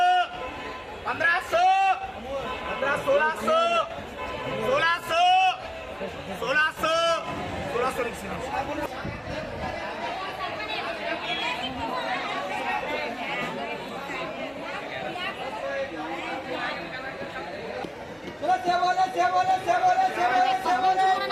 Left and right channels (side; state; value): both; identical; correlation 1.00